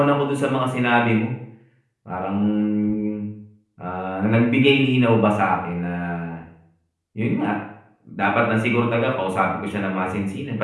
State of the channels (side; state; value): both; identical; correlation 1.00